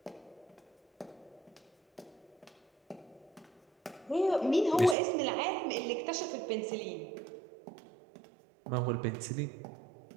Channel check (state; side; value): drops out; left; at 5.0 s